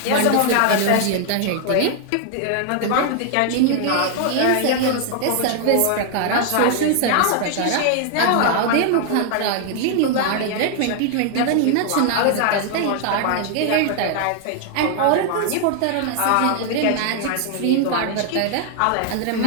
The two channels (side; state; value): both; different; correlation 0.00